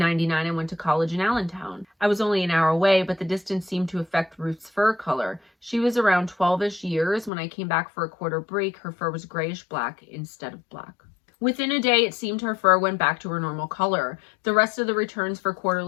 I went to college in Allentown. I was only an hour away, but the distance seemed to affect Ruth's fur color. She was around 12-ish years. When I came back for a quarter break, her fur was grayish-black instead of black. Within a day, it seemed her fur went back to her normal color. The rest of the returns for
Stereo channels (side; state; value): right; drops out; at 7.3 s